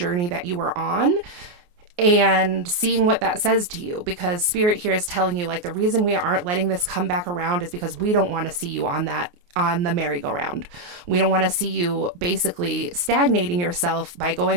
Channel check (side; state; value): left; late; 28 ms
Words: that you were on, and seeing what that says to you. Because spirit here is telling you, like, the reason we aren't letting this come back around is because we don't want to see you on the merry-go-round. We don't want to see you basically stagnating yourself by